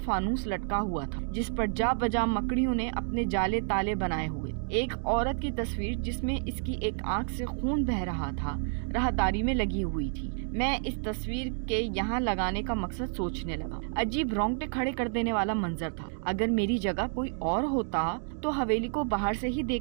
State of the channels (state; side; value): silent; left; 58 dB below the other